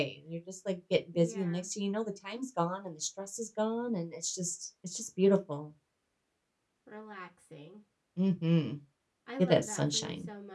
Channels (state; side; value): identical; both; correlation 1.00